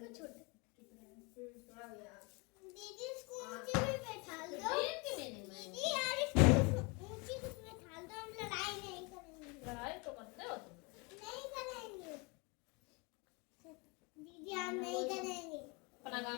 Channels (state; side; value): quieter; right; 29.3 dB